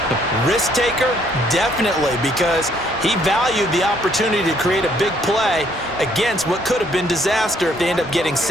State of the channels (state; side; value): normal; both; correlation 0.66